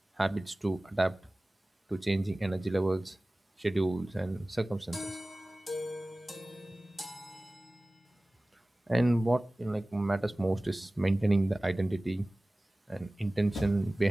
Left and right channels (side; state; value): both; normal; correlation 0.98